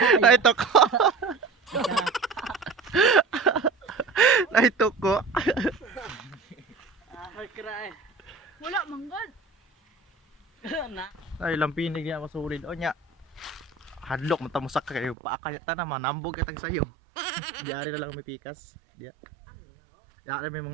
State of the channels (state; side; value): drops out; left; at 15.2 s